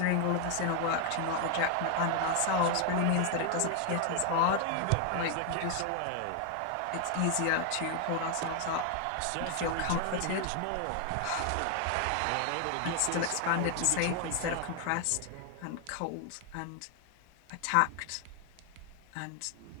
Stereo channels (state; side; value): different; both; correlation 0.00